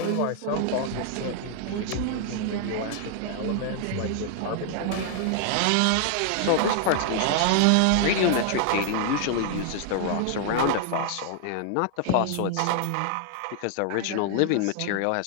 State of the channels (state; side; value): different; both; correlation 0.00